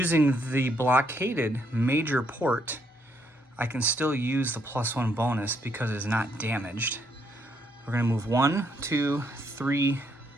the blockaded major port, I can still use the +1 bonus because it's not damaged. We're going to move 1, 2, 3,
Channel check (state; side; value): normal; both; correlation 0.73